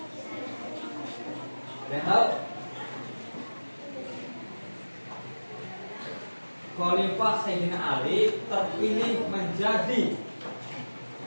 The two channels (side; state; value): both; inverted; correlation -1.00